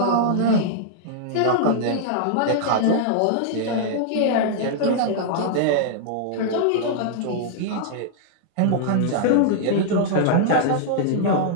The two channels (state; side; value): different; both; correlation -0.01